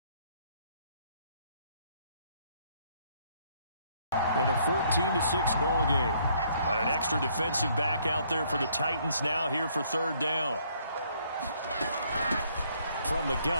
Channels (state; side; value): inverted; both; correlation -0.66